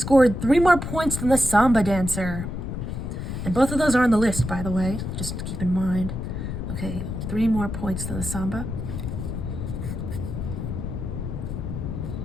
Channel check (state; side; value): noise; left; rumble, 5 dB below the sound